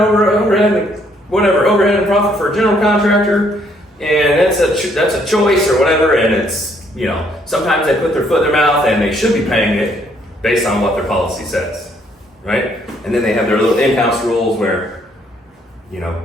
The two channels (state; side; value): normal; both; correlation 0.68